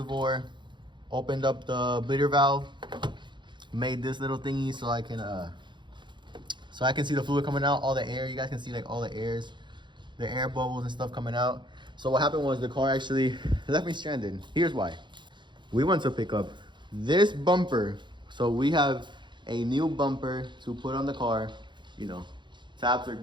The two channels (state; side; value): late; left; 0.23 ms